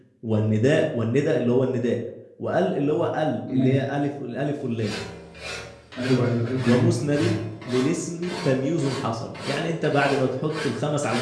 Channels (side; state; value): both; identical; correlation 1.00